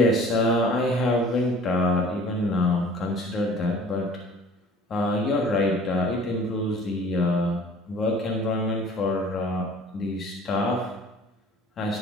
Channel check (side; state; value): both; normal; correlation 0.49